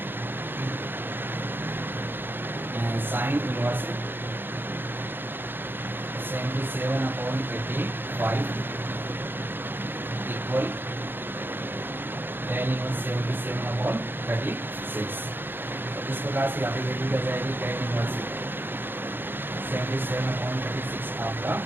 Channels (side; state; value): left; late; 0.099 ms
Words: sine inverse 77/85 equal tan inverse 77/36। तो इस प्रकार से यहाँ पे वैल्यू क्या जाएगी, tan इनवर्स 77/36 आपका